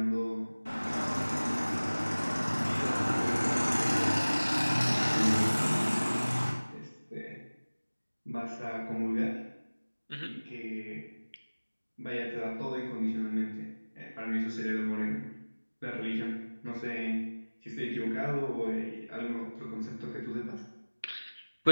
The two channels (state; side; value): inverted; both; correlation -1.00